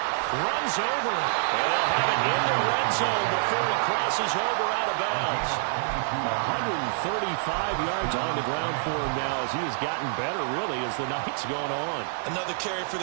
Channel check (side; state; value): left; silent; digital silence